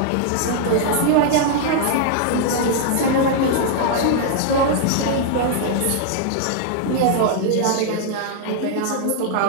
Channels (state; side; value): different; both; correlation 0.00